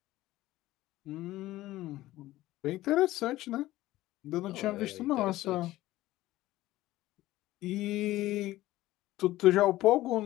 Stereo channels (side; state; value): right; quieter; 16.3 dB